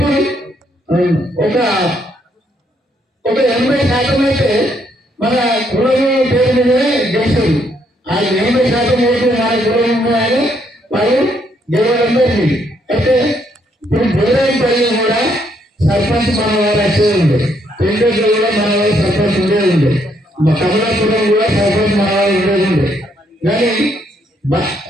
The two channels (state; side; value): normal; both; correlation 0.72